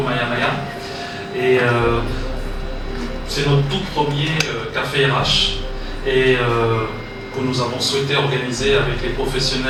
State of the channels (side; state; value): both; identical; correlation 1.00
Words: Maya Maya. Et c'est notre tout premier café RH et que nous avons souhaité organiser avec les